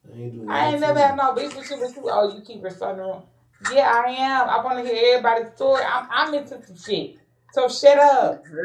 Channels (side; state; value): both; identical; correlation 1.00